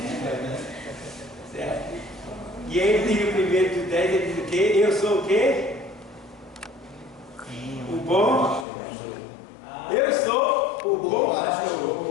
Certo? E ele diz no 1 do 10, ele diz o quê? Eu sou o quê? O bom. Eu sou o bom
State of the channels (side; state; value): right; drops out; at 8.7 s